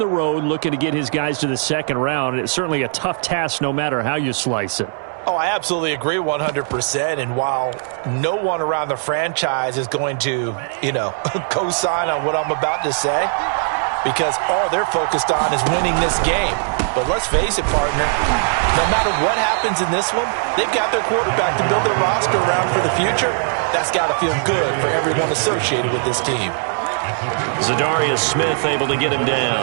road looking to get his guys to the 2nd round. And it's certainly a tough task no matter how you slice it. Oh, I absolutely agree 100%. And while no one around the franchise is going to, co-sign on what I'm about to say, because all they're focused on is winning this game. But let's face it, partner, no matter what happens in this one, they've got their quarterback to build their roster around for the future. That's got to feel good for everyone associated with this team. Zadarius Smith able to get him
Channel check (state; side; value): silent; left; digital silence